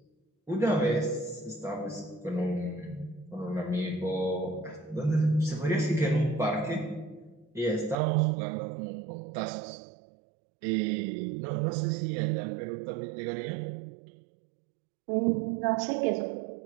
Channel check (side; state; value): left; drops out; at 8.0 s